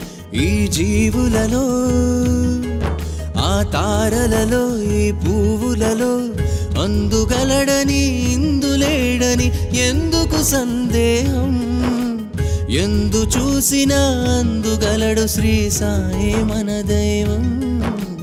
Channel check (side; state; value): both; identical; correlation 1.00